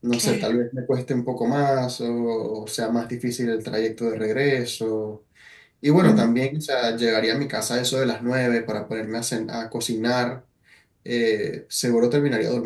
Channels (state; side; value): identical; both; correlation 1.00